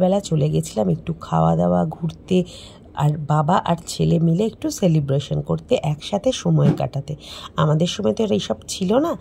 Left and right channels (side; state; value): both; identical; correlation 1.00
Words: চলে গেছিলাম একটু খাওয়া দাওয়া, ঘুরতে, আর বাবা আর ছেলে মিলে একটু সেলিব্রেশন করতে, একসাথে সময় কাটাতে। আমাদের সময় তো এইসব ছিল না,